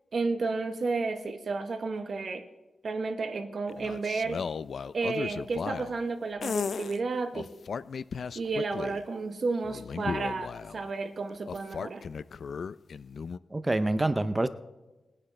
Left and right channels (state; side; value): normal; both; correlation 0.90